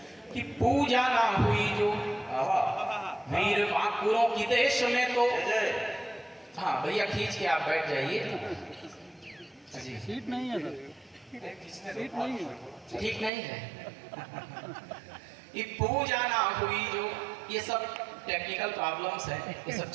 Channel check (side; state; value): left; drops out; at 13.3 s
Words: कि पूजा ना हुई जो वीर महापुरों की देश में तो। हाँ भैया खींच के आप बैठ जाइए। सीट नहीं है सर, सीट नहीं है, ठीक नहीं है। ये पूजा ना हुई जो, ये सब टेक्निकल प्रॉब्लम्स हैं, ये सब